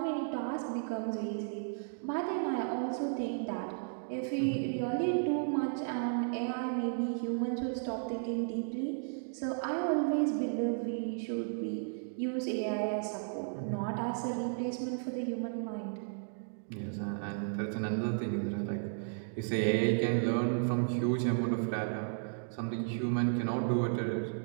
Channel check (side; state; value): left; silent; digital silence